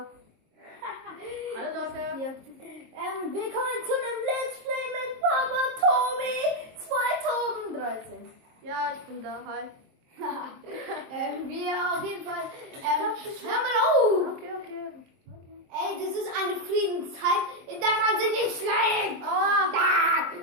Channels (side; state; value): left; late; 23 ms